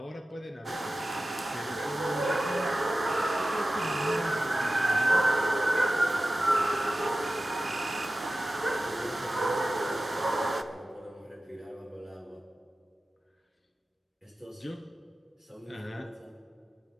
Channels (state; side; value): normal; both; correlation 0.95